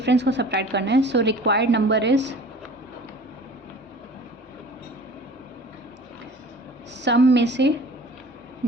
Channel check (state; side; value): normal; both; correlation 0.44